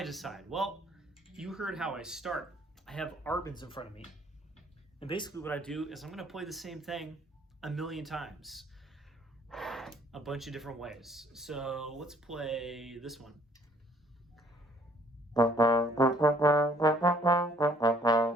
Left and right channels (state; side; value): normal; both; correlation 0.61